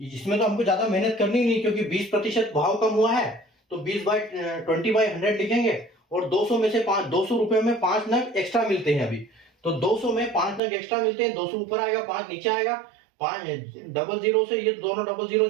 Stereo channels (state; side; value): drops out; left; at 10.6 s